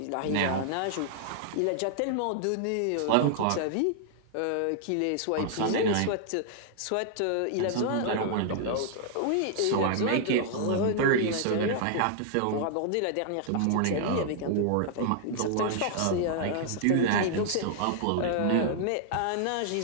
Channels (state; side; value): different; both; correlation -0.01